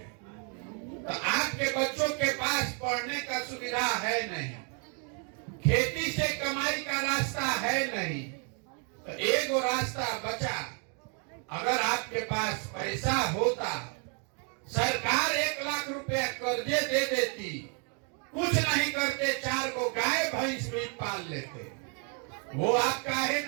तो आपके बच्चों के पास पढ़ने का सुविधा है नहीं, खेती से कमाई का रास्ता है नहीं। तो एक रास्ता बचा। अगर आपके पास पैसा होता, सरकार 1 लाख रुपया कर्जे दे देती, कुछ नहीं करते, 4 को गाय भैंस भी पाल लेते। वो आप काहे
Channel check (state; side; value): quieter; left; 39.1 dB